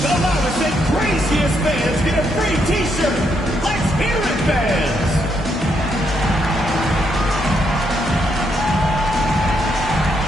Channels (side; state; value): both; normal; correlation 0.77